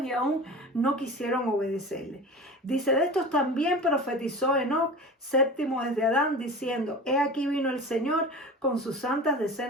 y aún no quisieron obedecerle. Dice, de estos también profetizó Enoc, séptimo desde Adán, diciendo, he aquí vino el Señor con sus santas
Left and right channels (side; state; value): both; normal; correlation 0.34